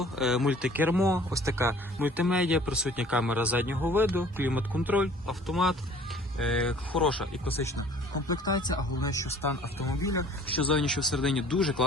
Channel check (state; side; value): normal; both; correlation 0.51